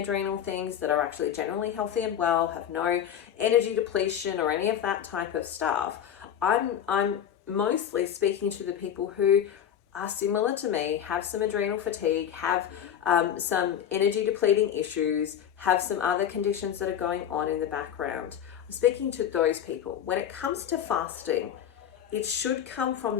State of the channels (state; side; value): quieter; right; 9.5 dB